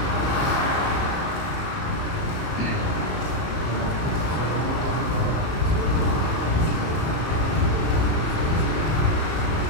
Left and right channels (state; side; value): late; right; 27 ms